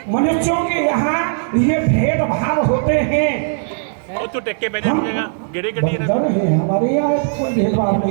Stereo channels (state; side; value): silent; left; digital silence